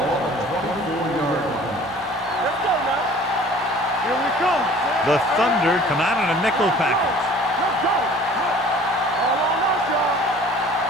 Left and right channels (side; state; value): both; normal; correlation 0.49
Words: on the 24-yard line. Let's go now. Here we come. The Thunder come out in a nickel package. Let's go. All on us, y'all.